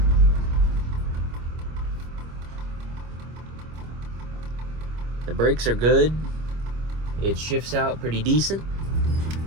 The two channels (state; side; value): late; left; 25 ms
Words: The brakes are good. It shifts out pretty decent.